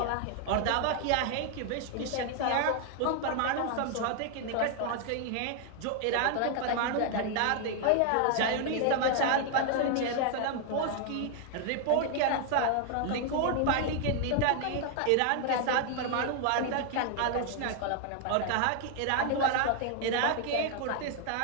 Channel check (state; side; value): different; both; correlation 0.00